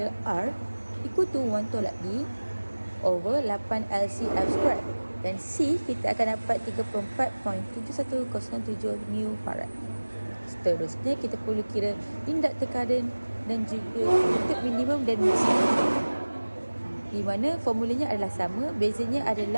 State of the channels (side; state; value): both; inverted; correlation -1.00